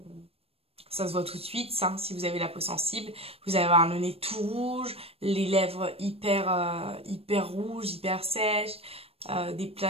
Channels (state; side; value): late; left; 0.28 ms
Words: ça se voit tout de suite, ça, si vous avez la peau sensible. Vous allez avoir le nez tout rouge, les lèvres hyper rouges, hyper sèches, des